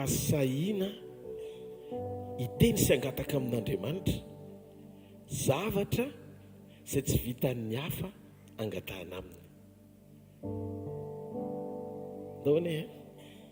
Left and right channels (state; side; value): identical; both; correlation 1.00